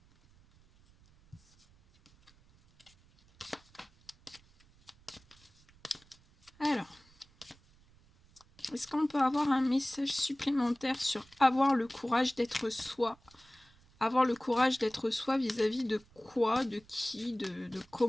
Alors, est-ce qu'on peut avoir un message supplémentaire sur avoir le courage d'être soi? Avoir le courage d'être soi vis-à-vis de quoi, de qui, de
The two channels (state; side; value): noise; right; rumble, 29 dB below the sound